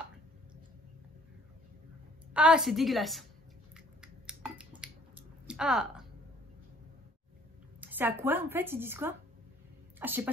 c'est dégueulasse. Ah. C'est à quoi en fait? Ils disent quoi? Ah, je sais pas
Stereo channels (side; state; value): both; normal; correlation 0.57